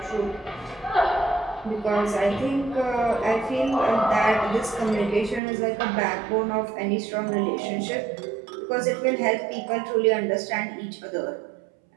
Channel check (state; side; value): drops out; left; at 5.4 s